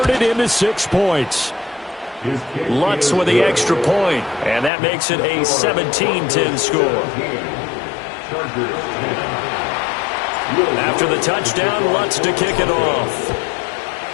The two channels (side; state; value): right; drops out; at 4.7 s